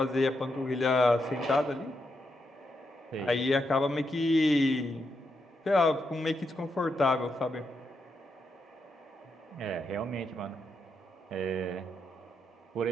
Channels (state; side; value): normal; both; correlation 0.82